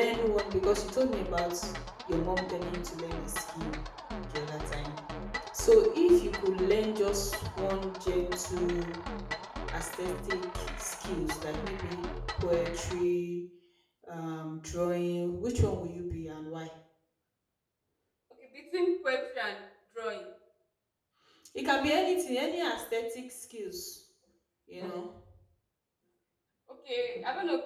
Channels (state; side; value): identical; both; correlation 1.00